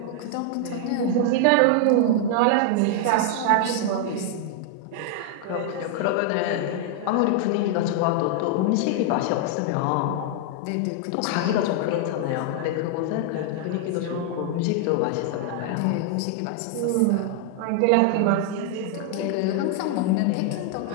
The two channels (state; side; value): different; both; correlation 0.00